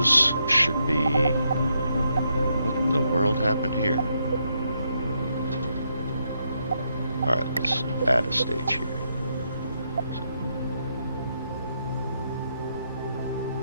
should be... What in the world happened here? Alright, let's add a stage here.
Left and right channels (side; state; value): both; inverted; correlation -0.79